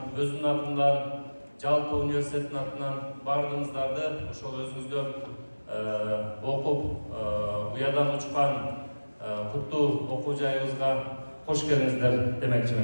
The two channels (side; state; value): both; inverted; correlation -1.00